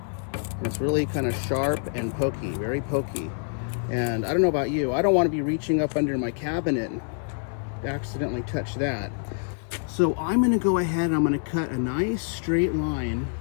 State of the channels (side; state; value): right; silent; 61 dB below the other